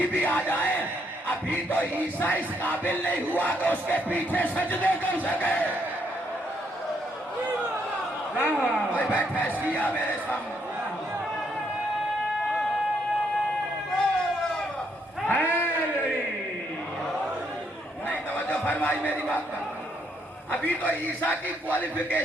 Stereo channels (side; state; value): both; normal; correlation 0.74